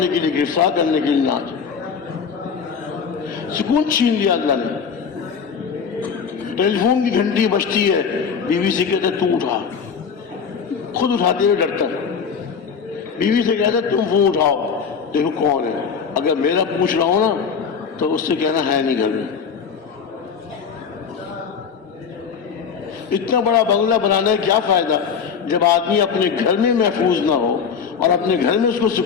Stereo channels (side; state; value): right; quieter; 6.4 dB